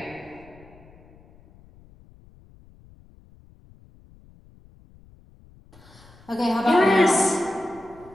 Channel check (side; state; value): left; noise; rumble, 25 dB below the sound